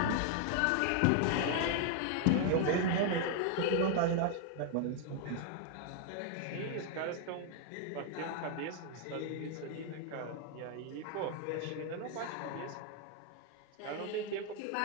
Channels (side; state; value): both; different; correlation 0.00